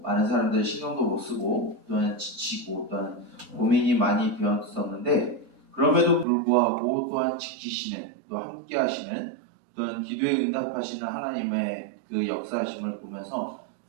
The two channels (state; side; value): drops out; left; at 6.2 s